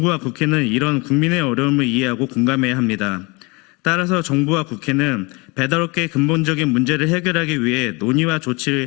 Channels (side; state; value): right; quieter; 27.2 dB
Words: 국회는 이런 국민의 어려움을 이해하고 공감해야 합니다. 따라서 정부와 국회는 배달업계의 근본적인 문제를 해결하기 위해 논의와